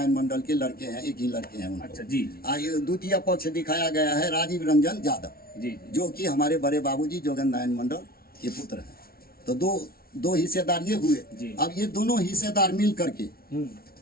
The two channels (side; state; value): right; late; 0.44 ms